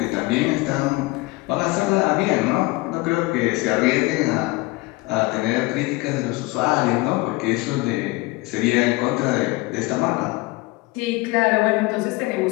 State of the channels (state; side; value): quieter; right; 22.7 dB